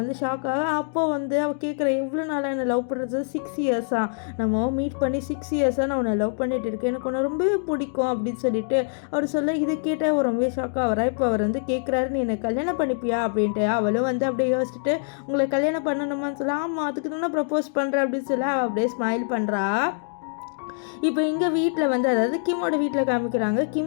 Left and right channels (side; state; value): right; silent; digital silence